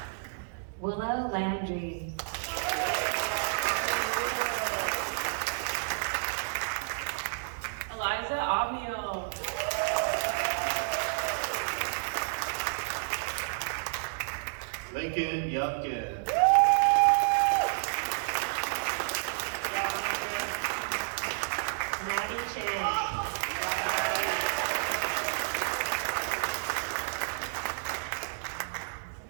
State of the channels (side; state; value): left; silent; digital silence